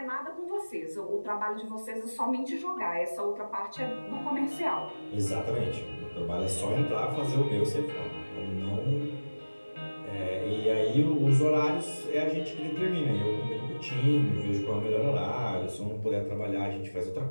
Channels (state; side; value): inverted; both; correlation -1.00